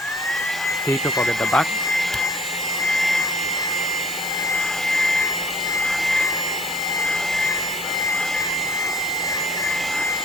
We took out at the back.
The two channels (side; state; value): both; normal; correlation 0.54